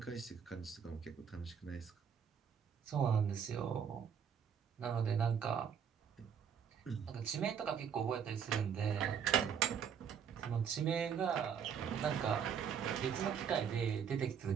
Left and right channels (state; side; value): quieter; left; 7.5 dB